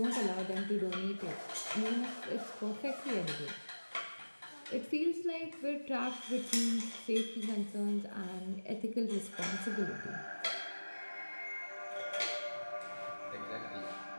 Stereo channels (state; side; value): inverted; both; correlation -1.00